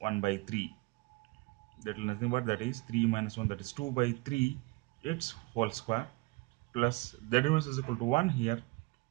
by 3. That is nothing but, that is 3 minus 1, that is 2 by 3 its whole square plus Z inverse is equal to 1 here.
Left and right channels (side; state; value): left; quieter; 23.9 dB